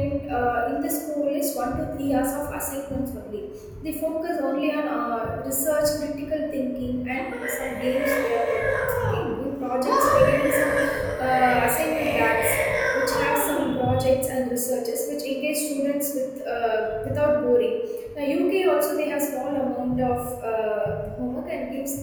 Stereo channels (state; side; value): identical; both; correlation 1.00